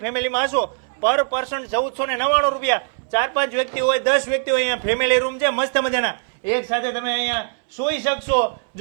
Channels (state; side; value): silent; left; 65 dB below the other